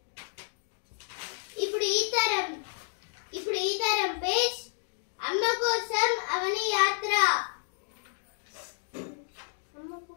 ఇప్పుడు ఈ తరం పేజ్ అమ్మ కోసం అవని యాత్ర.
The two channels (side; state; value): right; silent; digital silence